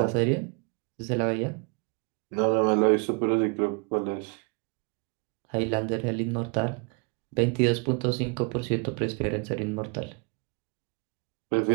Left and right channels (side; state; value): left; quieter; 34.7 dB